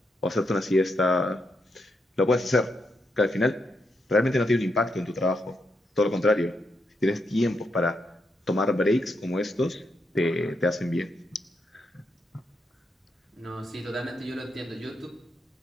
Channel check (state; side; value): normal; both; correlation 0.81